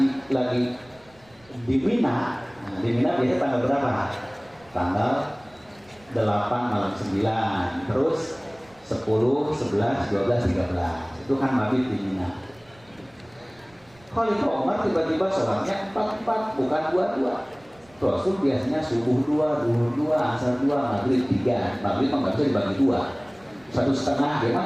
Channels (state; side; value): noise; right; rumble, 29 dB below the sound